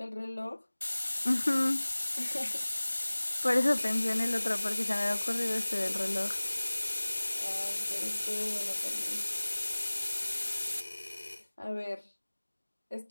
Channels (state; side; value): inverted; both; correlation -1.00